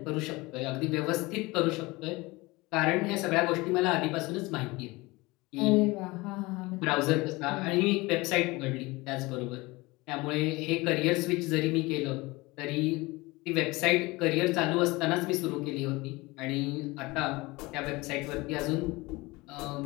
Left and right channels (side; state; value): right; quieter; 22.5 dB